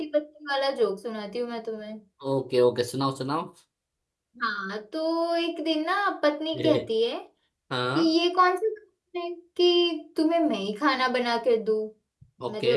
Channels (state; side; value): identical; both; correlation 1.00